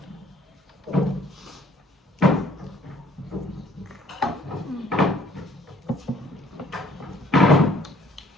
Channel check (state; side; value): normal; both; correlation 0.59